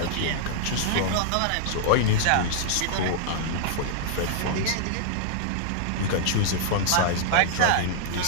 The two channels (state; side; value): different; both; correlation -0.01